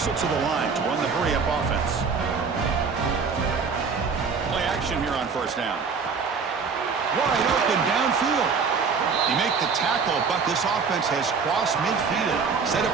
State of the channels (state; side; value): quieter; left; 5.4 dB